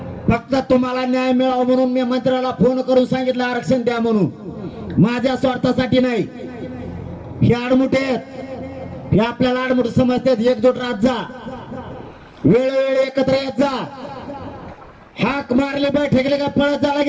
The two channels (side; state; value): both; identical; correlation 1.00